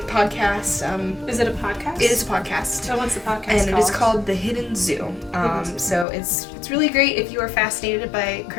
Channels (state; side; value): drops out; right; at 6.1 s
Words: Is it a podcast? It is a podcast. So what's the podcast And called? it is called The Hidden Zoo. So it's really great if you are fascinated by